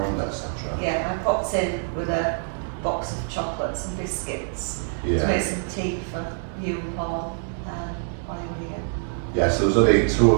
etc.? Yeah, I popped in with a box of chocolates and biscuits to make some tea for you and Paul while you were here. Yeah, so there was only two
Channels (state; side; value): silent; left; 59 dB below the other